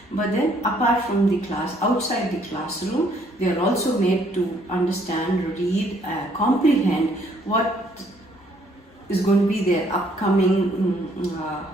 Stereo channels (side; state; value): both; normal; correlation 0.65